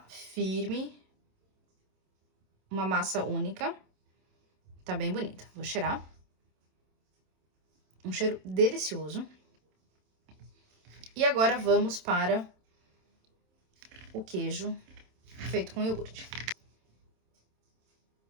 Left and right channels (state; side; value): late; left; 27 ms